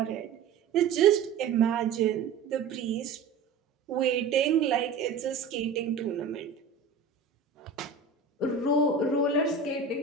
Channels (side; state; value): left; quieter; 5.4 dB